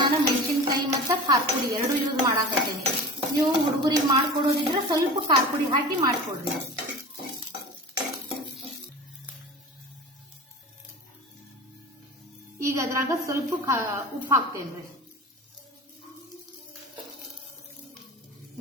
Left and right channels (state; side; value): normal; both; correlation 0.35